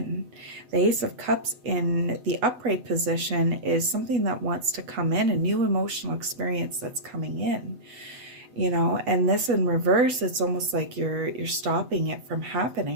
The Ace of Cups in the upright position is something that wants to come in, a new emotional experience that's coming in. You know, and this in reverse, it's almost like you're stopping it from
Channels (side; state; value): left; late; 8.1 ms